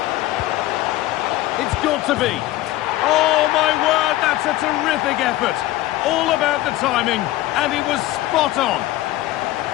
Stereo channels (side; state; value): right; quieter; 16.2 dB